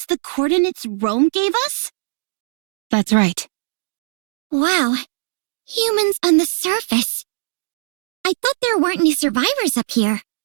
the coordinates Rome gave us? That's right. Wow. Humans on the surface. I thought there weren't any survivors up here.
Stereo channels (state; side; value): silent; left; digital silence